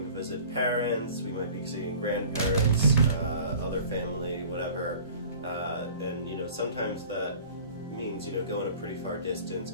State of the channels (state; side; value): inverted; both; correlation -0.45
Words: to visit parents, we might be seeing grandparents, other family, whatever. And you know, sometimes that means, you know, going a pretty far distance,